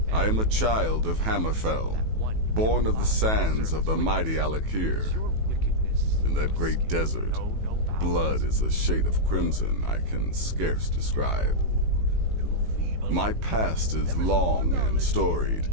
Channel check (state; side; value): late; left; 18 ms